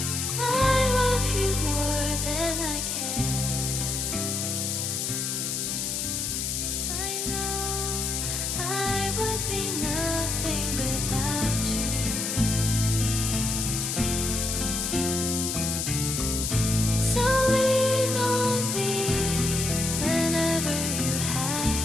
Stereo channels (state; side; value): noise; left; hiss, 1 dB below the sound